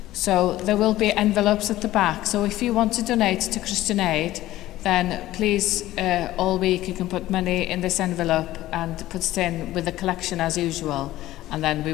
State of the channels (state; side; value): quieter; right; 15.5 dB